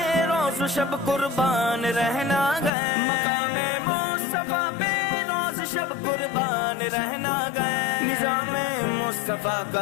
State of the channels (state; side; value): drops out; right; at 2.7 s